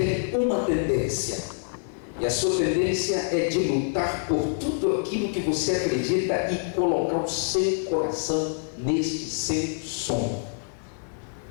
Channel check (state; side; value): silent; right; digital silence